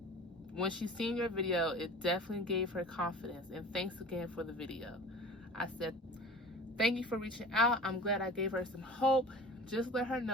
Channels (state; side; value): normal; both; correlation 0.40